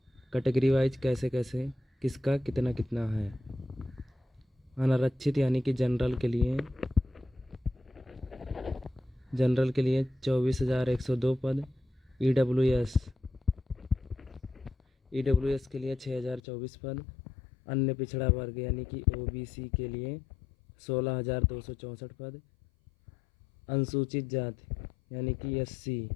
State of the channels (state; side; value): drops out; right; at 16.4 s